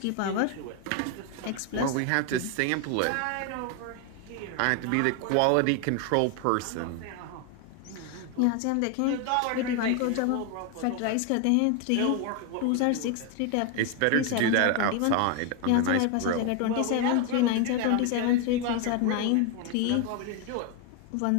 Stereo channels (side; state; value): both; different; correlation 0.01